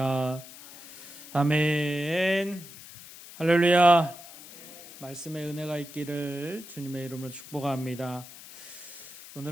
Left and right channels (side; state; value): left; noise; hiss, 16 dB below the sound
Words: 아멘. 할렐루야. 말씀의 은혜가 있기를 주님의 이름으로 축복합니다.